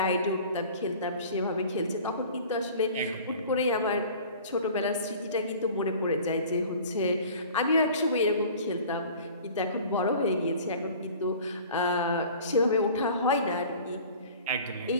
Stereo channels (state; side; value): inverted; both; correlation -0.44